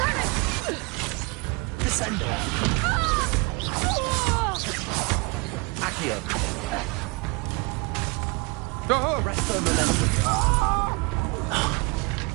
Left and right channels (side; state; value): left; quieter; 28.8 dB